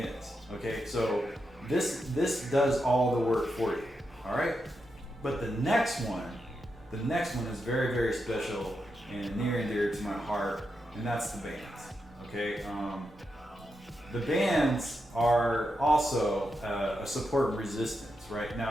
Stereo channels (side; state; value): both; normal; correlation 0.86